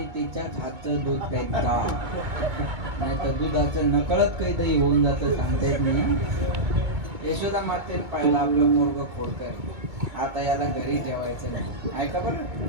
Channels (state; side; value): late; left; 2.2 ms